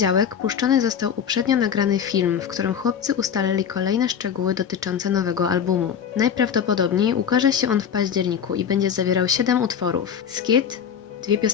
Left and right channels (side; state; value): right; quieter; 8.0 dB